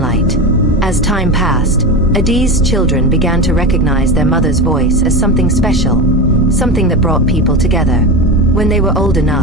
As time passed, Adaeze's children began to recognize their mother's voice as something special, something that brought people together. When they were old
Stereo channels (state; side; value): normal; both; correlation 0.22